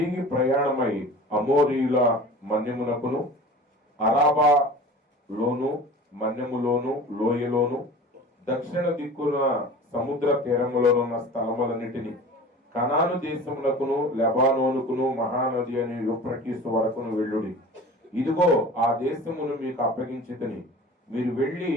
ప్రయాణమై అమోరీయుల మన్యమునకును అరాబా లోను మన్యములోను లోయలోను దక్షిణ దిక్కున సముద్ర తీరములోనున్న స్థలములన్నిటిని కనాను దేశమునకును లెబానోనుకును మహానది అని యూఫ్రటీసు వరకును వెళ్ళుడి. ఇదిగో ఆ దేశమును మీకు అప్పగించితిని. మీరు వెళ్ళి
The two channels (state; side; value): normal; both; correlation 0.39